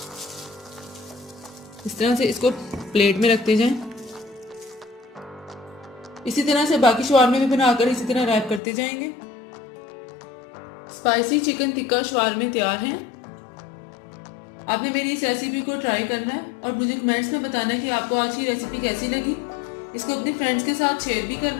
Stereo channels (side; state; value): right; drops out; at 8.6 s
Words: इस तरह से इसको प्लेट में रखते जाएं। इसी तरह से बाकी शवारमे भी बनाकर इसी तरह रैप करते जाएंगे। स्पाइसी चिकन टिक्का शवारमे तैयार हैं। आपने मेरी इस रेसिपी को ट्राई करना है और मुझे कमेंट्स में बताना है कि आपको आज की रेसिपी कैसी लगी। इसको अपने फ्रेंड्स के साथ शेयर भी करना